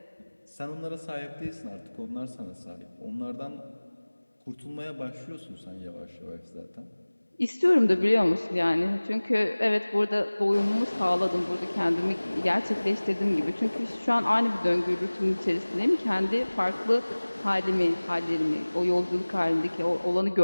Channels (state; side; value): inverted; both; correlation -1.00